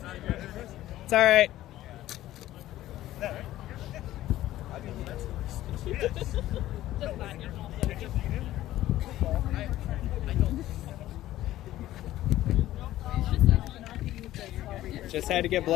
It's all right. Just had to get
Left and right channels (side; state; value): right; quieter; 14.6 dB